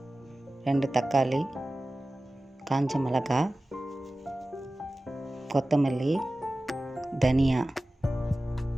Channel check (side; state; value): both; normal; correlation 0.96